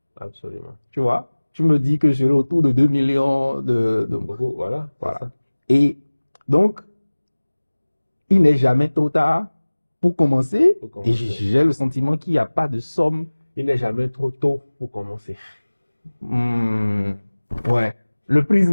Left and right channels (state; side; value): inverted; both; correlation -1.00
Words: Absolument. Tu vois? Tu me dis que je serai autour de 2 millions de... Voilà. Et donc, il n'est jamais trop tard pour commencer. Et j'ai le sentiment qu'il n'y a pas de somme. Il n'est jamais trop tôt pour commencer. Ouais. Le